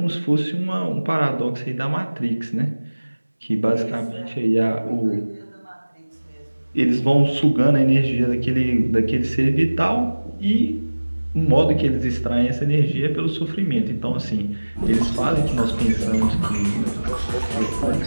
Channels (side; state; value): both; inverted; correlation -1.00